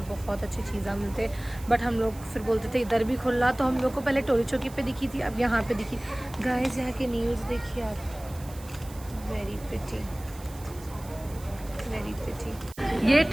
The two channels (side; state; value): right; noise; hiss, 19 dB below the sound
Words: बहुत अच्छी चीज़ें मिलते, बट हम लोग फिर बोलते थे इधर भी खुला। तो हम लोग को पहले टोली चौकी पे दिखी थी, अब यहाँ पे दिखी। गाइस यहाँ के न्यूज़ देखिए आप, वेरी प्रिटी, वेरी प्रिटी। ये